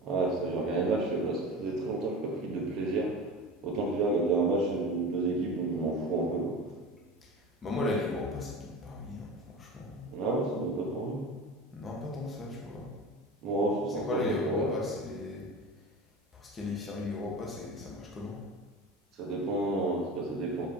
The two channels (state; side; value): normal; both; correlation 0.32